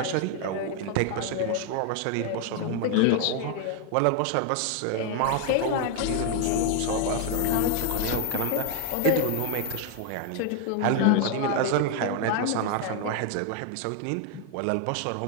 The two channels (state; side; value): different; both; correlation 0.01